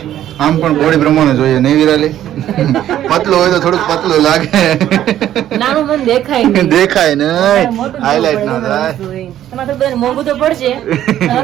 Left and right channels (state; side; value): quieter; left; 11.9 dB